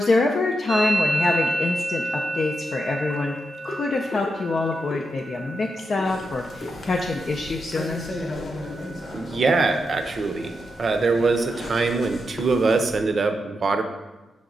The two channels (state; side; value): normal; both; correlation 0.85